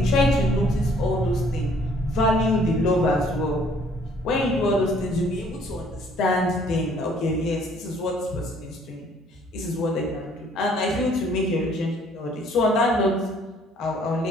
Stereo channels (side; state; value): both; normal; correlation 0.60